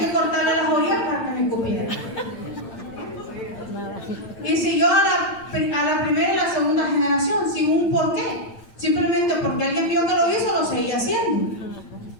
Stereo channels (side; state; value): right; late; 8.9 ms